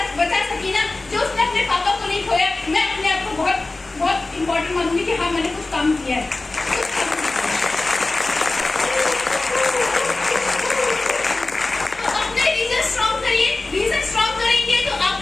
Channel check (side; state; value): right; quieter; 3.2 dB